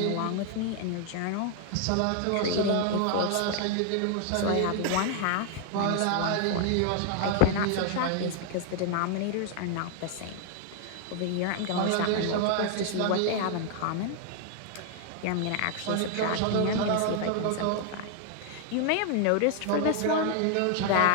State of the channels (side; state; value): both; different; correlation 0.00